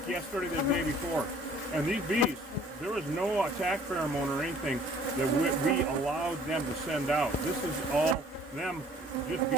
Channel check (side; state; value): both; normal; correlation 0.55